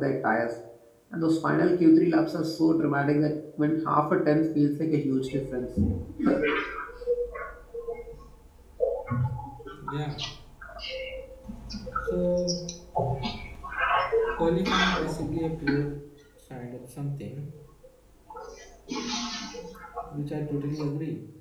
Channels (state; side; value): identical; both; correlation 1.00